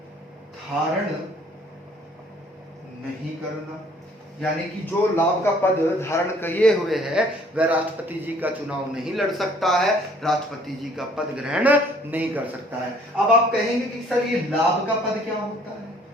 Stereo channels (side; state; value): both; normal; correlation 0.58